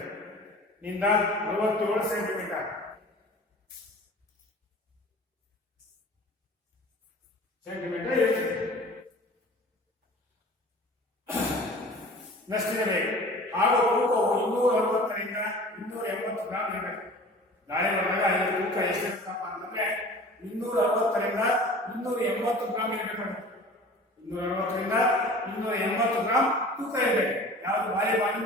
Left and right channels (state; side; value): normal; both; correlation 0.42